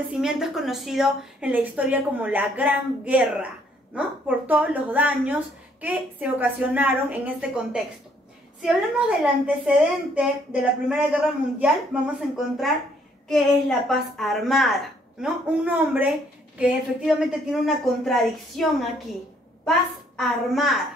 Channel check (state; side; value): normal; both; correlation 0.66